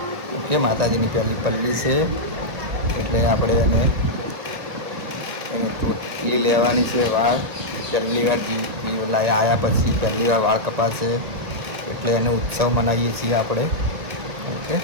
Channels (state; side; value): late; left; 1.7 ms